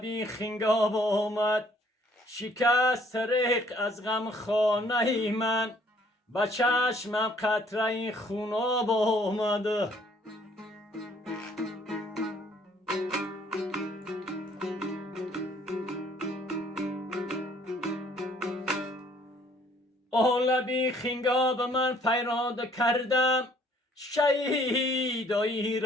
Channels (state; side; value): normal; both; correlation 0.61